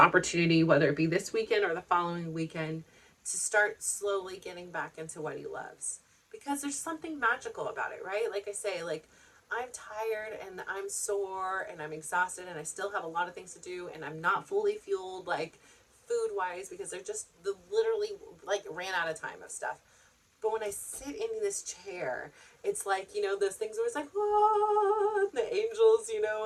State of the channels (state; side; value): identical; both; correlation 1.00